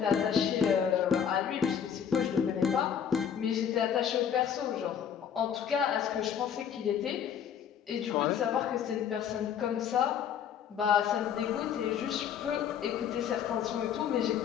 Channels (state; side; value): quieter; right; 8.3 dB